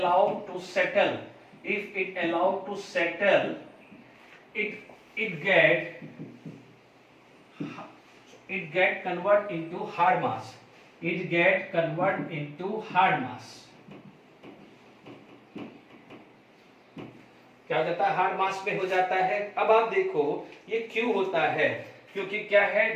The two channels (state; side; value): identical; both; correlation 1.00